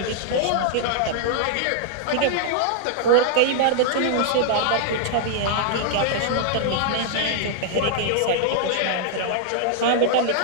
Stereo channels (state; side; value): different; both; correlation -0.01